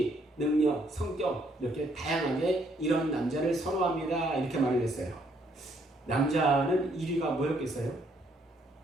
능력, 성격 이렇게 다양하게 이런 남자를 선호합니다. 이렇게 말을 했어요. 남자는 1위가 뭐였겠어요?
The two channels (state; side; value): normal; both; correlation 0.69